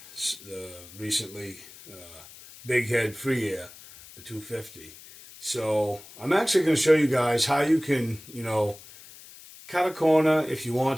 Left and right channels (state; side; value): noise; left; hiss, 19 dB below the sound